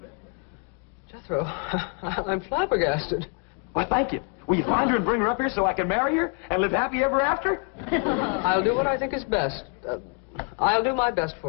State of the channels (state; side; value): quieter; right; 34.4 dB